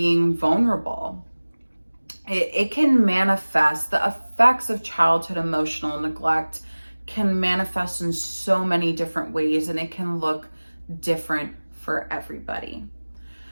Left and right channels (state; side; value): inverted; both; correlation -1.00